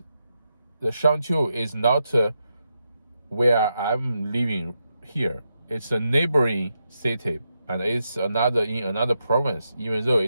the Shangqiu, is not where I'm living here. It's a neighboring city, and it's in another province. Even though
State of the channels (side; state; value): both; inverted; correlation -0.85